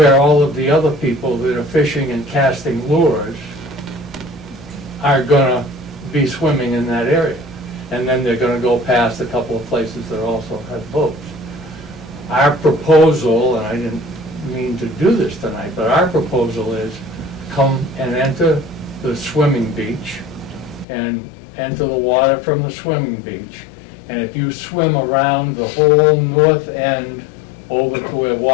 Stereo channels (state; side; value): drops out; right; at 20.9 s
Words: all of the other people that are fishing and casting lures are going to be swimming in that area. And then they're going to go past a couple of places that also have boats. Our proposal, and I didn't mean to do this tonight, but our proposal is come and enter the swimming beach and enter the water from the swimming beach. And if you swim around the whole north end over to where